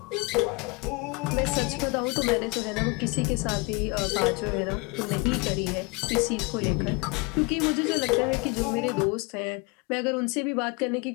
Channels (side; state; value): right; quieter; 27.4 dB